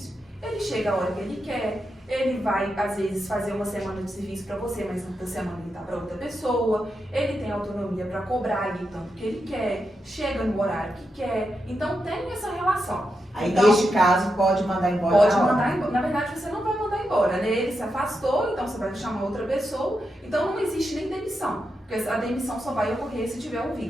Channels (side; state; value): both; normal; correlation 0.86